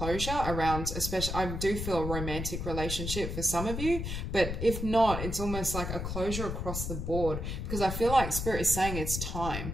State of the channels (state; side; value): noise; left; rumble, 4 dB below the sound